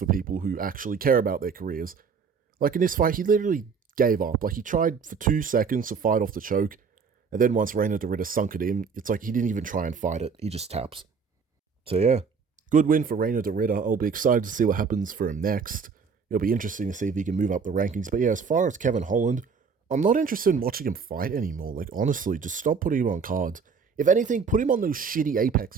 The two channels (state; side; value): quieter; left; 5.7 dB